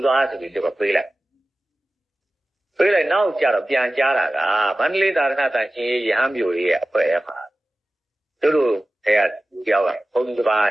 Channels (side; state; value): both; normal; correlation 0.95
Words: သွားဆိုပြီးတော့ပေးလိုက်နောက်ကြတော့ပြန်ကြားတာကမန္တလေးသာသနာ့တန်ရှင်ရဟန်းမျိုးရဲ့အဖွဲ့အမှာတို့အဲ့ကြောက်ကဘုန်းကြီးတစ်ပါး